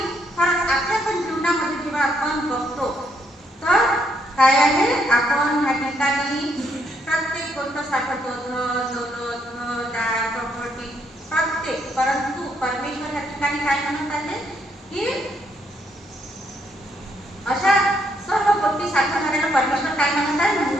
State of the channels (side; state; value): both; normal; correlation 0.74